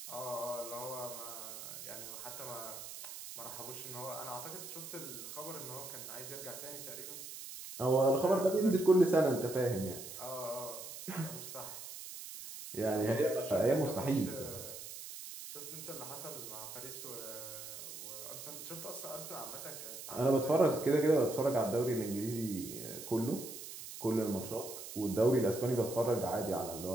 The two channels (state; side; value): noise; right; hiss, 10 dB below the sound